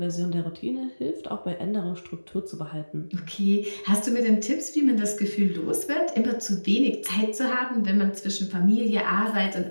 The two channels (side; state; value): both; inverted; correlation -1.00